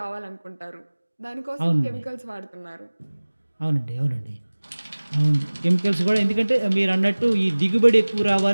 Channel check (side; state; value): both; inverted; correlation -1.00